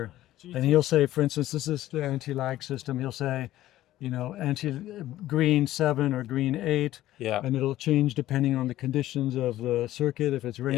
and he'll say, for instance, this is the anti-lag system. He'll say, green 7 or green 8, Yeah. and it'll change depending on the conditions of the circuit. If it's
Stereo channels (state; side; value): quieter; right; 14.5 dB